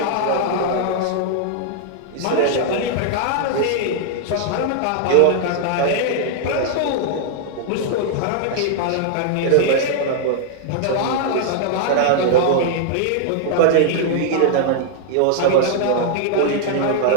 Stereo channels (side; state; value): both; different; correlation 0.00